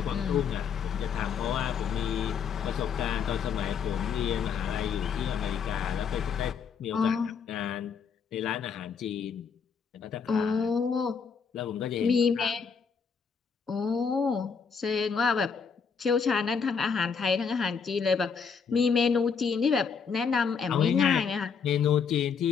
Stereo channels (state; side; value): quieter; right; 6.2 dB